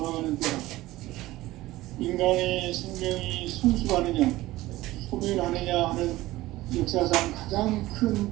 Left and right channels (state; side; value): quieter; left; 17.5 dB